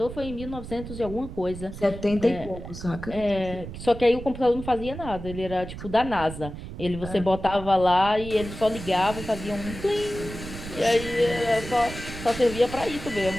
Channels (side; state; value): right; noise; rumble, 11 dB below the sound